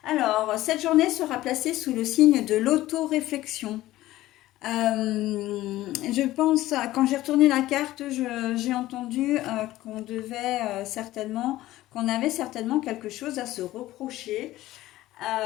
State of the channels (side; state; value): right; quieter; 15.9 dB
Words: Alors, cette journée sera placée sous le signe de l'auto-réflexion. Je pense, quand j'ai retourné la carte, j'ai entendu qu'on devait certainement, qu'on avait certainement quelque chose à se reprocher.